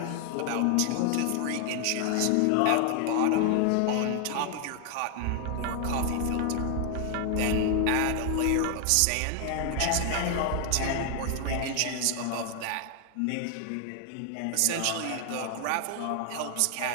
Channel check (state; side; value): different; both; correlation 0.00